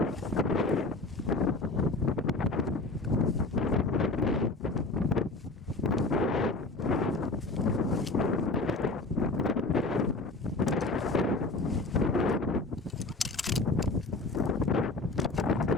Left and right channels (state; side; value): quieter; right; 3.2 dB